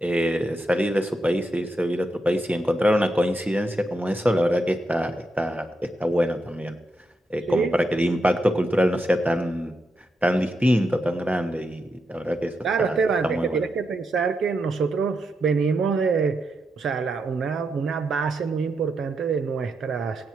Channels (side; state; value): both; normal; correlation 0.84